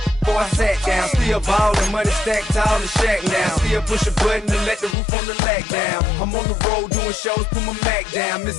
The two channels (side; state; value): right; drops out; at 5.0 s